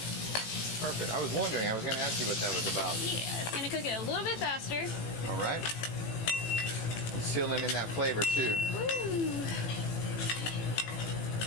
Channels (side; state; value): right; late; 18 ms